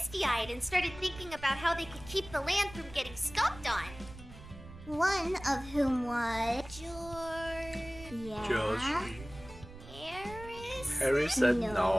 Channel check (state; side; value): noise; right; rumble, 16 dB below the sound